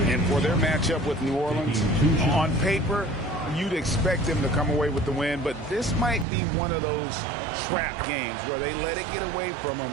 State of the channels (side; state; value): left; drops out; at 6.2 s